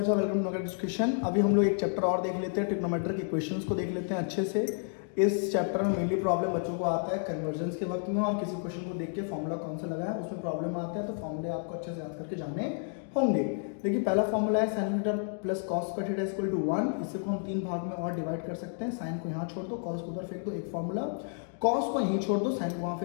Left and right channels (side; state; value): right; silent; 57 dB below the other